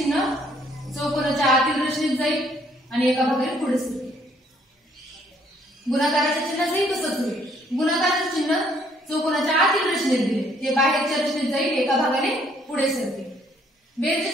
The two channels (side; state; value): both; normal; correlation 0.65